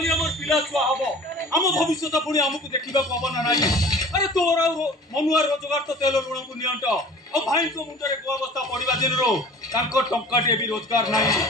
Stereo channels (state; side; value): normal; both; correlation 0.44